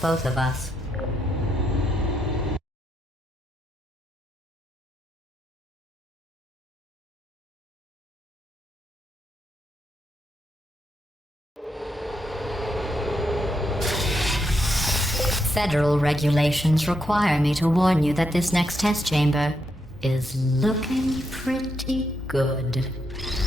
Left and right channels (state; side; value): normal; both; correlation 0.81